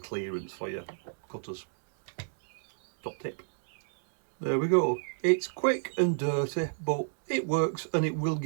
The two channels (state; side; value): silent; left; digital silence